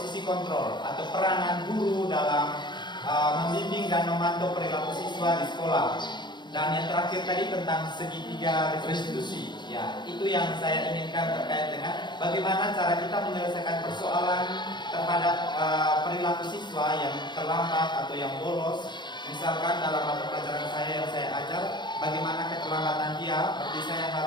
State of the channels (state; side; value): late; right; 0.22 ms